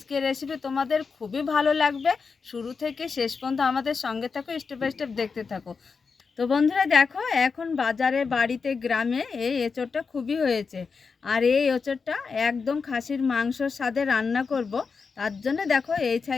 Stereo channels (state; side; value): quieter; right; 5.1 dB